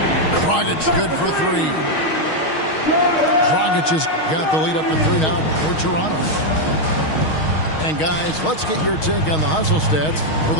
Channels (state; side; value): late; right; 6.4 ms